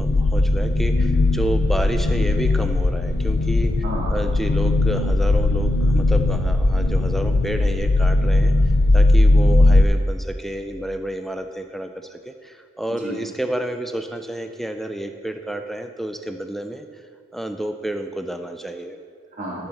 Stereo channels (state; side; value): normal; both; correlation 0.90